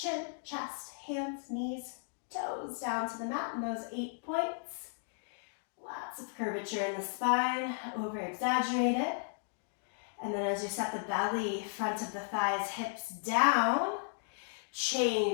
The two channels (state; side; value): silent; right; digital silence